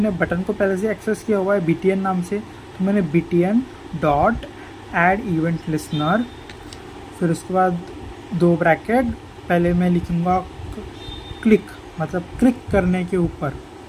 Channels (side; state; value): both; identical; correlation 1.00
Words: बटन को पहले से एक्सेस किया हुआ है btn नाम से, तो मैंने btn dot add event listener, फिर उसके बाद 2 ब्रैकेट, पहले मैं लिखूँगा क्लिक, मतलब क्लिक करने के ऊपर,